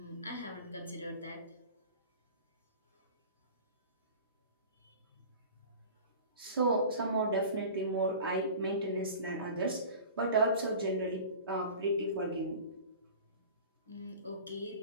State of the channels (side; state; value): both; inverted; correlation -0.39